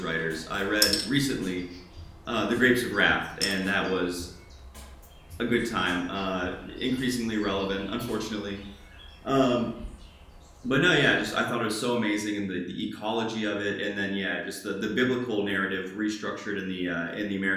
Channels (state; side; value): identical; both; correlation 1.00